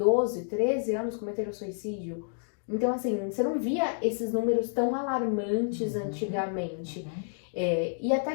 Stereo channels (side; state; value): right; silent; digital silence